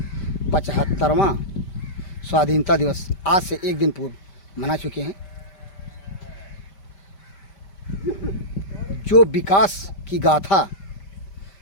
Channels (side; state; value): right; late; 5.1 ms